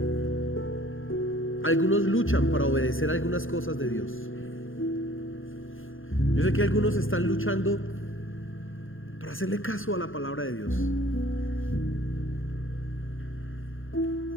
algunos luchan para obedecer algunas cosas de Dios. Yo sé que algunos están luchando para hacerle caso a la palabra de Dios.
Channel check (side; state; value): right; late; 0.59 ms